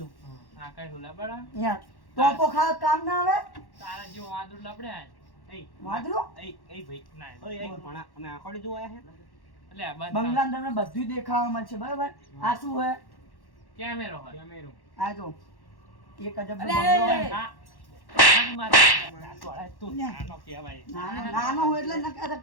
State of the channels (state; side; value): late; right; 1.1 ms